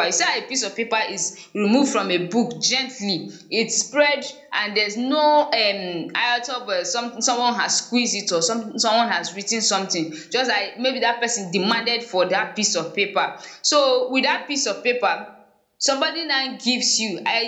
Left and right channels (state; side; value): identical; both; correlation 1.00